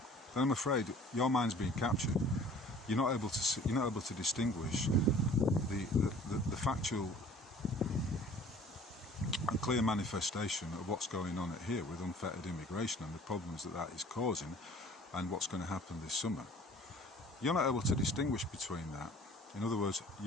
then I'm afraid your mind's being captured. You're not able to distinguish the factual and clear manifestation of what's going on here with unfettered immigration and the problems that is causing, and what's going to happen this summer. You're not able to distinguish between that. In other words,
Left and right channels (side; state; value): both; normal; correlation 0.50